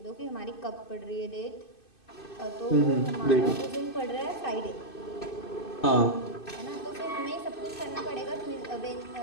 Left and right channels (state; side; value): late; right; 2.6 ms